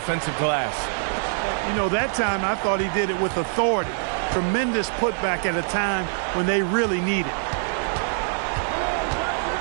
glass. You know, that time I thought he did it with authority. Tremendous putback at a time when they really need it.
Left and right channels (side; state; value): left; silent; 63 dB below the other